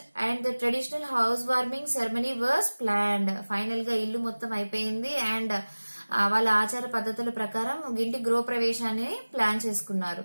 and the traditional housewarming ceremony was planned. Final గా ఇల్లు మొత్తం అయిపోయింది అండ్ వాళ్ళ ఆచార పద్ధతుల ప్రకారం ఇంటి గృహప్రవేశాన్ని ప్లాన్ చేసుకున్నారు.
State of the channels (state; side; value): inverted; both; correlation -1.00